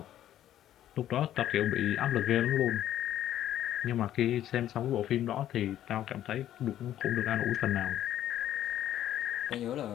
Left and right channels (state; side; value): quieter; right; 12.0 dB